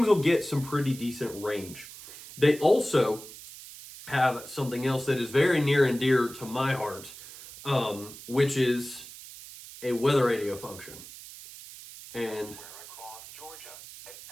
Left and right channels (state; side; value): noise; right; hiss, 15 dB below the sound